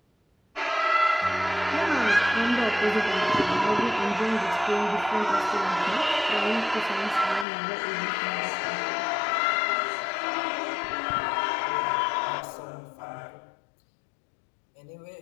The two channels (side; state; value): right; drops out; at 7.5 s